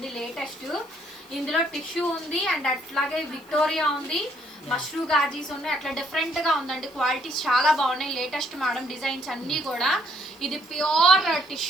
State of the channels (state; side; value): noise; left; hiss, 27 dB below the sound